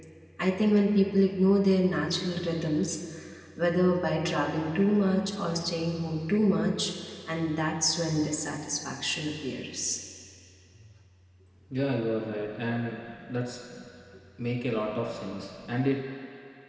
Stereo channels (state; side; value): identical; both; correlation 1.00